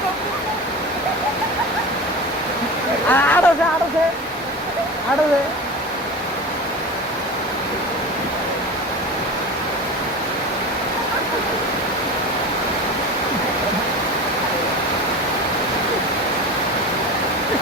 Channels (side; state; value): both; normal; correlation 0.30